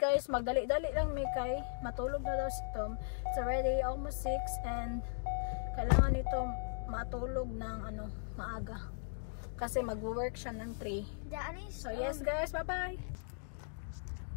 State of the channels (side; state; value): right; silent; digital silence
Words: Magdali-dali lang may kay. Matulog na daw si Tom. It's already almost 6 and kailangan nito matulog ng maaga. Kasi mag-work siya ng 3. Daddy. So, yes guys. Bye-bye.